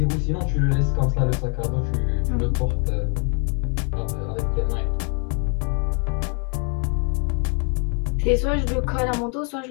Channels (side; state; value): right; quieter; 37.4 dB